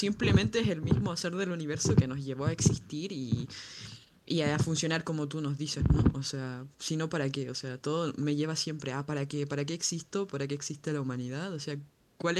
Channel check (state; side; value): identical; both; correlation 1.00